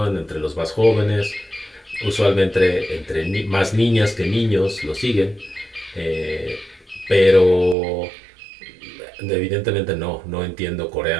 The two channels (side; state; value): left; drops out; at 7.8 s